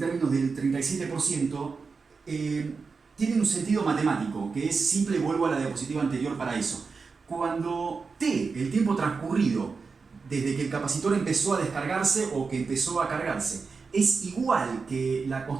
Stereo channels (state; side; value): quieter; left; 4.8 dB